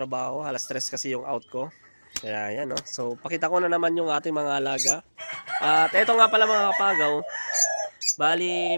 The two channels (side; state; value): both; inverted; correlation -1.00